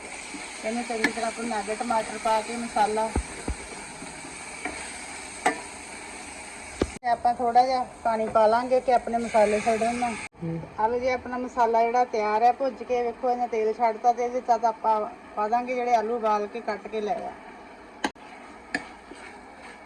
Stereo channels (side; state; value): both; identical; correlation 1.00